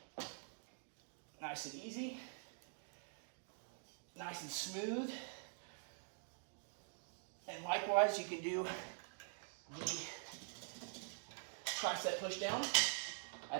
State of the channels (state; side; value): silent; left; digital silence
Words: Nice and easy. Nice and smooth. And likewise, you can do the tricep push down